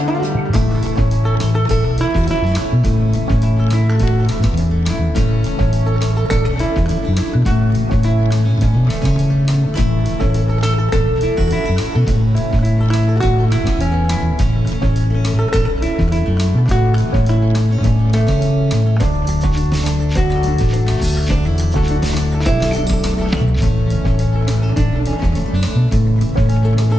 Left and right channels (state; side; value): normal; both; correlation 0.89